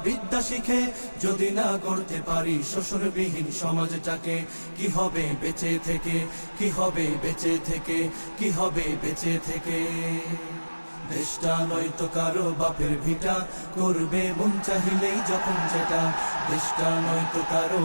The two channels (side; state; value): both; inverted; correlation -1.00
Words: বিদ্যা শিখে, যদি না গড়তে পারি শোষণবিহীন সমাজটাকে। কি হবে বেঁচে থেকে, কি হবে বেঁচে থেকে, কি হবে বেঁচে থেকে। দেশটা নয়তো কারো বাপের ভিটা, করবে মন চাহিলেই যখন যেটা। দেশটা নয়তো কারো